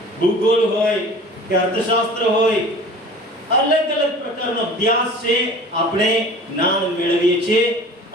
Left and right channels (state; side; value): normal; both; correlation 0.42